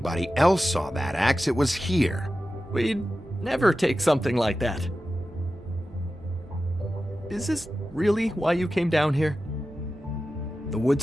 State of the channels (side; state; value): both; normal; correlation 0.93